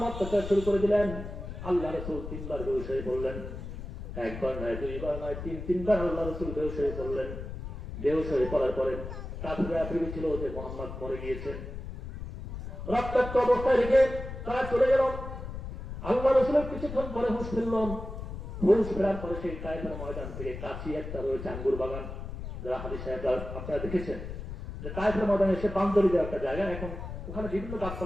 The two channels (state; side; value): noise; left; rumble, 8 dB below the sound